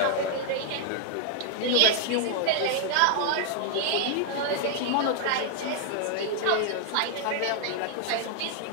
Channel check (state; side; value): different; both; correlation 0.00